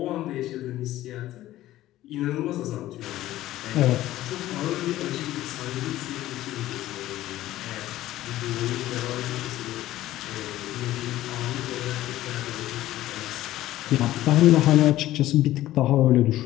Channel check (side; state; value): right; quieter; 14.8 dB